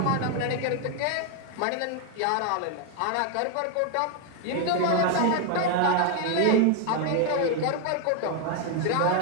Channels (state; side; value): different; both; correlation 0.01